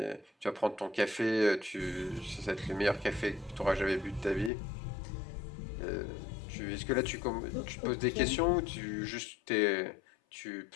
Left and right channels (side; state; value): right; drops out; at 4.5 s